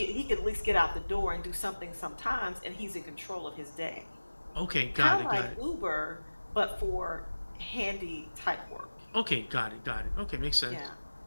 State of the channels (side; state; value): both; inverted; correlation -1.00